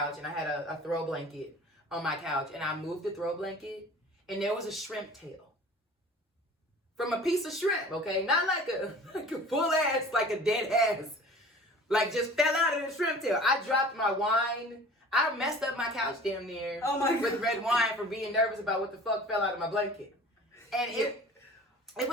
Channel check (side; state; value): both; normal; correlation 0.44